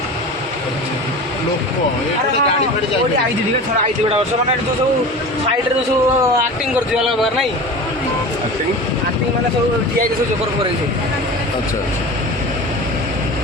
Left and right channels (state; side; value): normal; both; correlation 0.34